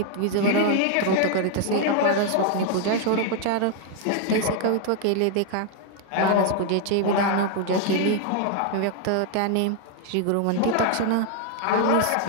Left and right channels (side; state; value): both; different; correlation 0.00